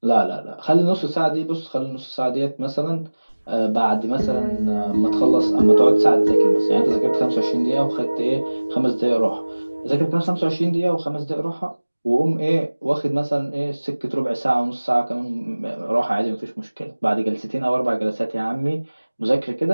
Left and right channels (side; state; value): both; inverted; correlation -1.00